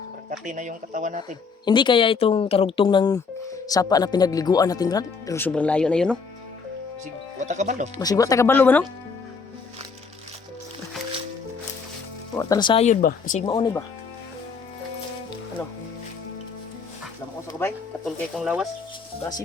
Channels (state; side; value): quieter; right; 5.1 dB